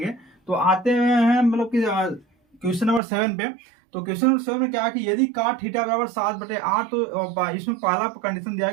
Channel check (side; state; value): left; drops out; at 3.0 s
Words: तो आते हैं मतलब कि क्वेश्चन नंबर 7 पे। तो क्वेश्चन नंबर 7 में क्या है कि यदि cot थीटा बराबर 7/8, तो इसमें पहला कंडीशन दिया